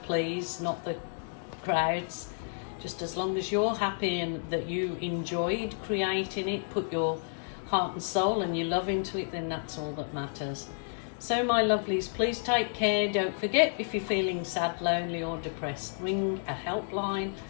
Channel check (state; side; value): silent; right; digital silence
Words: not the crowds. Just as long as you're happy and that you enjoyed creating it, put your heart and soul and your love into it, then that's all that matters. So my lovelies, please take care. Don't forget, if you're feeling sad, lonely or depressed, ring a helpline